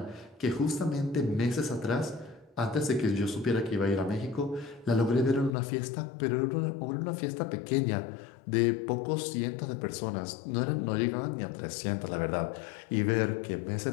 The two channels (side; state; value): right; drops out; at 5.6 s